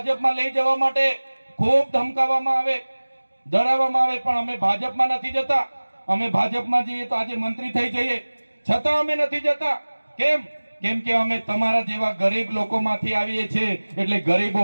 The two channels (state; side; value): inverted; both; correlation -1.00